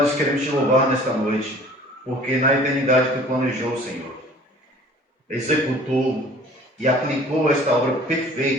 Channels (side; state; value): both; normal; correlation 0.49